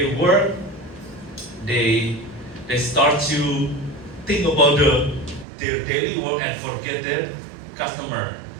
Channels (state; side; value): drops out; left; at 5.5 s